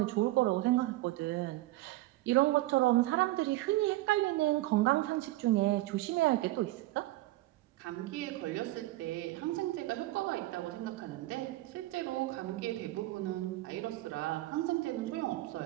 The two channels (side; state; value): left; quieter; 17.8 dB